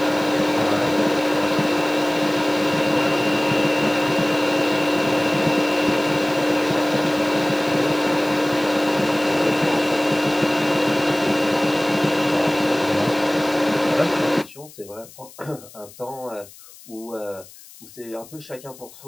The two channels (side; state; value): left; noise; hiss, 21 dB below the sound